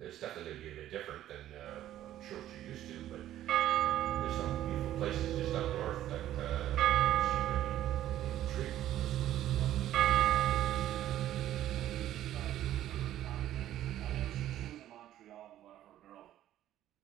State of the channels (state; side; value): quieter; left; 12.7 dB